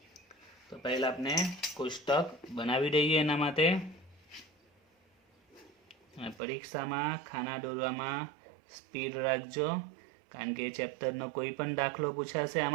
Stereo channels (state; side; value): drops out; left; at 6.4 s